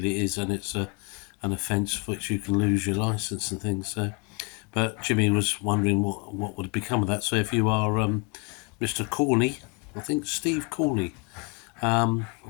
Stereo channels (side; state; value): right; quieter; 30.0 dB